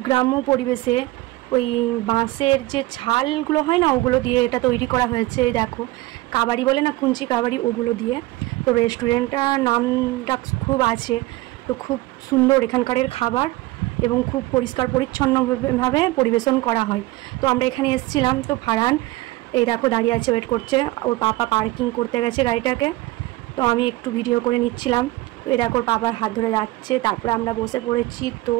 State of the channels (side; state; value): left; quieter; 19.5 dB